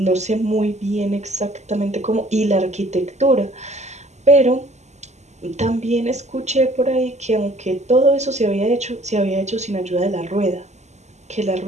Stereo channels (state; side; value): late; left; 0.33 ms